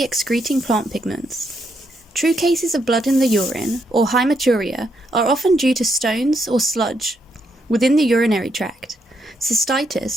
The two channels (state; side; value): normal; both; correlation 0.77